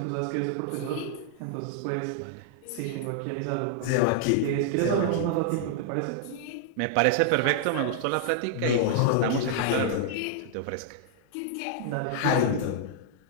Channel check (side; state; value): both; different; correlation -0.01